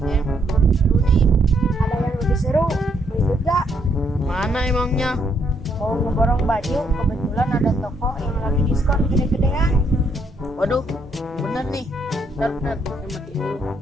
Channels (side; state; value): both; normal; correlation 0.73